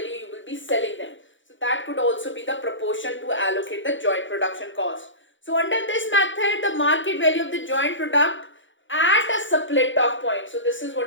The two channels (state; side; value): late; right; 0.56 ms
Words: you will be selling them. So that could also be the proportion to allocate the joint production cost. So under this method, the market value of the joint product at a split off point. So this is